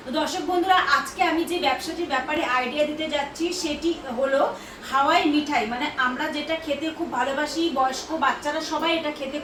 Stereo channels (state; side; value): identical; both; correlation 1.00